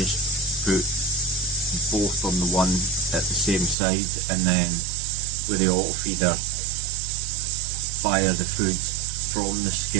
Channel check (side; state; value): left; drops out; at 3.8 s